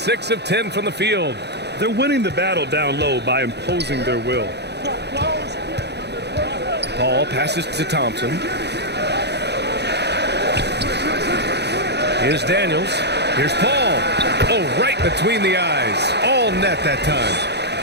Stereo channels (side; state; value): left; late; 0.49 ms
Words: of 10 from the field. They're winning the battle down low by imposing their will. Paul passes to Thompson. Here's Daniels. Here's Paul. Oh, right between the eyes. All net that time.